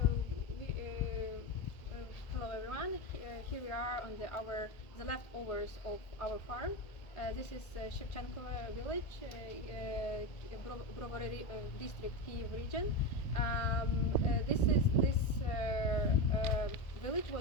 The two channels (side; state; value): right; late; 1.8 ms